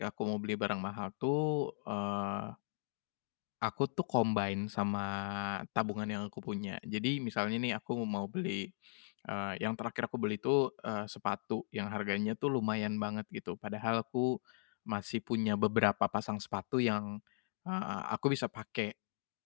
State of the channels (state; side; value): silent; right; digital silence